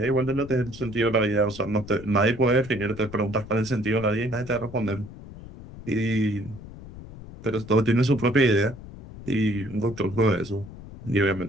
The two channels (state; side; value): noise; left; rumble, 15 dB below the sound